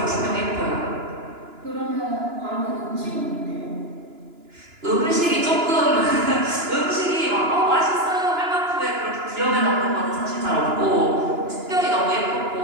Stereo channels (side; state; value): left; late; 2.9 ms